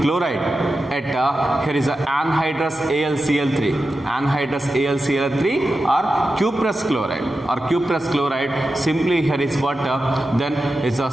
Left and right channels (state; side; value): normal; both; correlation 0.91